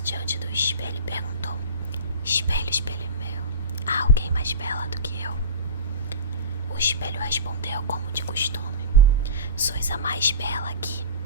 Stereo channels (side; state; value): both; inverted; correlation -0.30